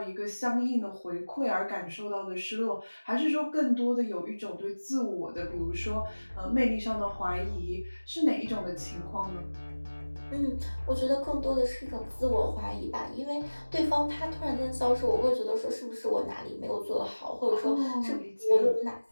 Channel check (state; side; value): inverted; both; correlation -1.00